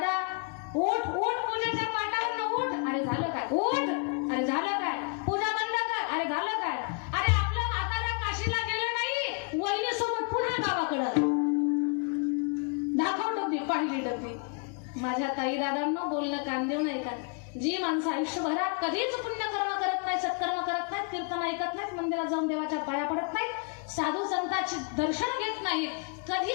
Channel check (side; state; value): right; quieter; 38.2 dB